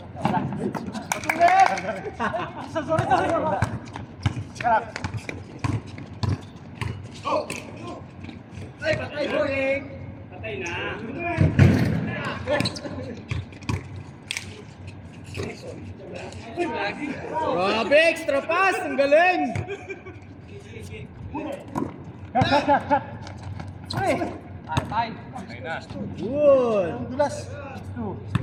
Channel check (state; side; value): identical; both; correlation 1.00